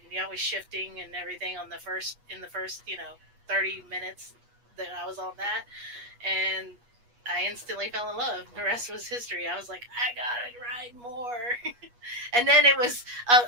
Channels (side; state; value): left; late; 8.3 ms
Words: shifting and everything in the first 30 minutes that I was on that, and I instantly fell in love. The rest was history. I was like, I gotta ride more. And then it was